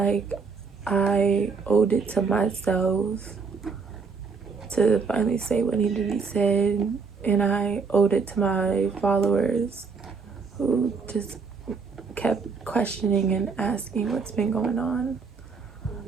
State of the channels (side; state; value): left; quieter; 5.1 dB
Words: I owed it to myself to finally say what needed to be said, and I owed it to my followers who just kept questioning and asking what's been going on.